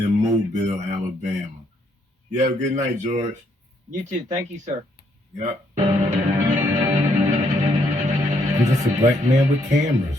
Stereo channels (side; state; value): both; normal; correlation 0.72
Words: Mobile, Alabama. You have a good night, George. You too. Thank you, sir. Yep. I'm just a black man with cameras.